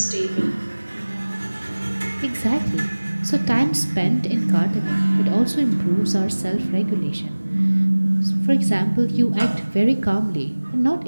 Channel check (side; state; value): both; inverted; correlation -1.00